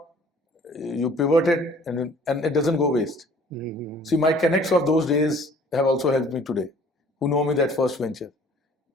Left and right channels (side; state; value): both; normal; correlation 0.53